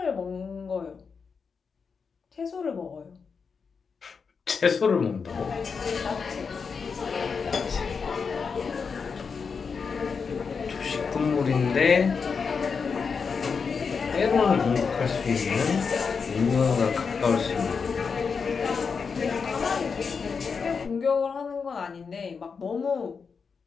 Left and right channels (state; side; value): quieter; right; 5.5 dB